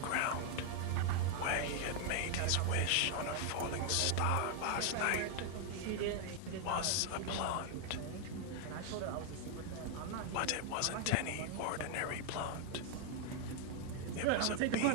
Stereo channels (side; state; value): both; different; correlation 0.00